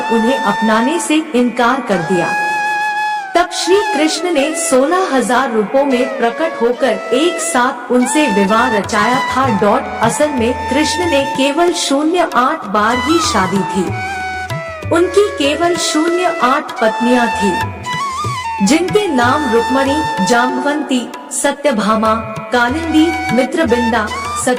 उन्हें अपनाने से इनकार कर दिया। तब श्री कृष्ण ने 16,000 रूपों में प्रकट होकर एक साथ उनसे विवाह रचाया था। असल में कृष्ण ने केवल 08 बार ही शादी थी। उनकी केवल 08 पत्नियां थी, जिनके नाम रुक्मणी, जाम्बवंती, सत्यभामा, कालिंदी, मित्रबिंदा,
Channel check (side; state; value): both; identical; correlation 1.00